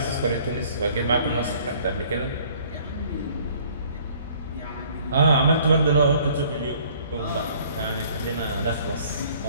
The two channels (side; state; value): both; inverted; correlation -0.56